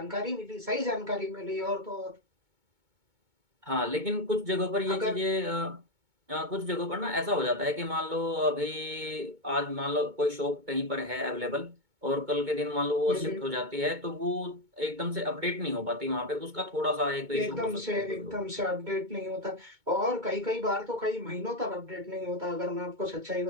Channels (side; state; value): left; late; 2.2 ms